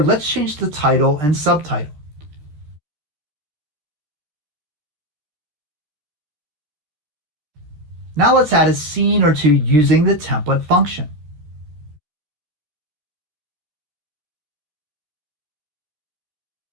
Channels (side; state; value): left; late; 13 ms